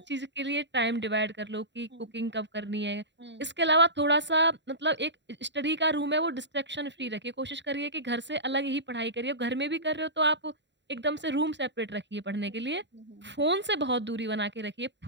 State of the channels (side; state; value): left; late; 0.52 ms